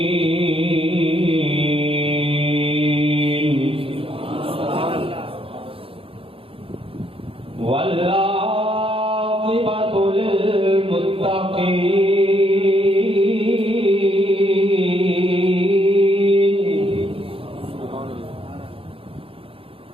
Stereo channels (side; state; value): left; late; 0.27 ms